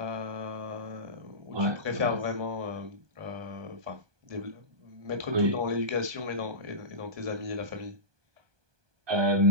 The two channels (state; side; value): late; left; 1.2 ms